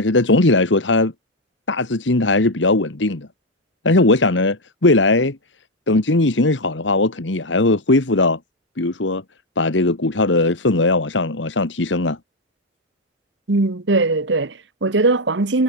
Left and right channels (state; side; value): normal; both; correlation 0.04